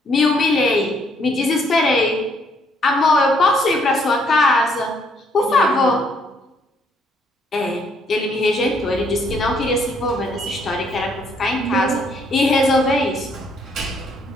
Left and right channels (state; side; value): normal; both; correlation 0.68